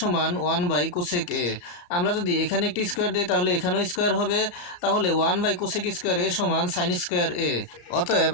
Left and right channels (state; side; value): late; right; 34 ms